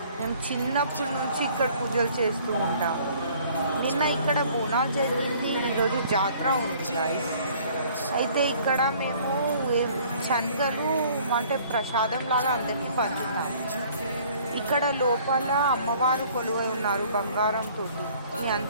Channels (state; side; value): inverted; both; correlation -0.55